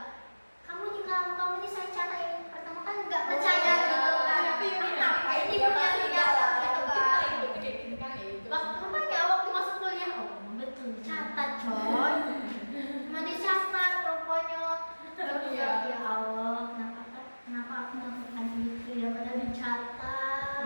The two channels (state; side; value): inverted; both; correlation -1.00